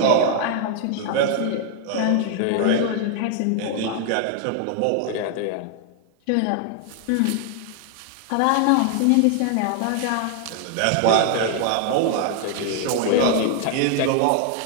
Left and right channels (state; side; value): different; both; correlation 0.00